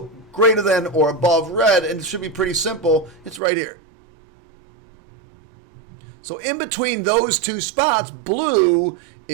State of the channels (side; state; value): left; drops out; at 3.4 s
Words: greater than or above red? And it should be pretty simple. It's right here. So in between those two spots, blue